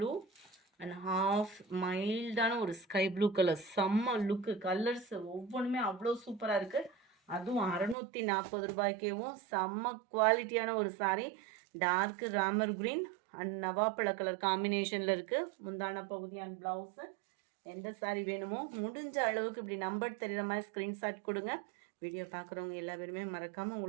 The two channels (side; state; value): left; drops out; at 8.0 s